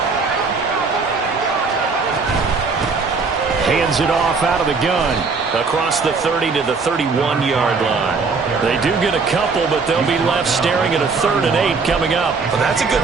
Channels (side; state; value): left; quieter; 4.6 dB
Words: Hands it off out of the gun. Across the 30 to the 31-yard line. They do get a couple, but they'll be left staring at a 3rd and 8 coming up. Well, that's a